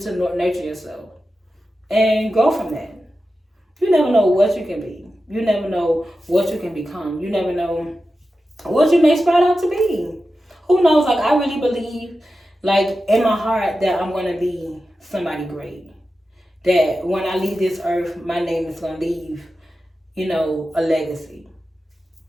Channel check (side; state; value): both; normal; correlation 0.92